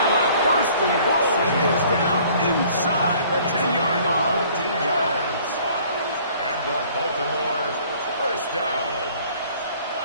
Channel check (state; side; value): inverted; both; correlation -0.55